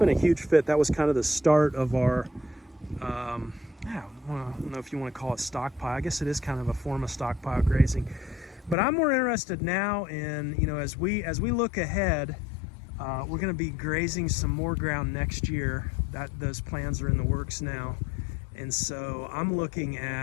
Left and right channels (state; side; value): drops out; right; at 8.8 s